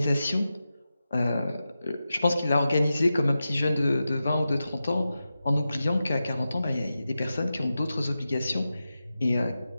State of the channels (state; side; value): inverted; both; correlation -0.92